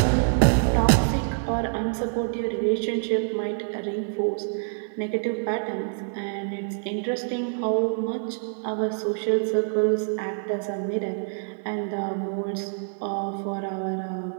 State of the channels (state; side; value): silent; left; digital silence